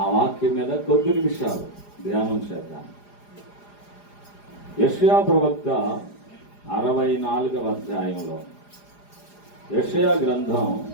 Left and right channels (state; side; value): late; right; 4.9 ms